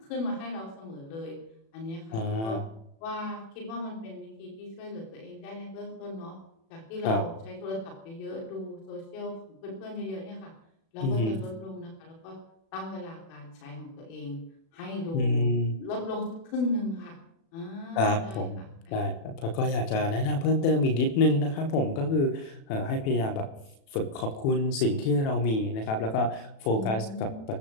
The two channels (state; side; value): late; right; 36 ms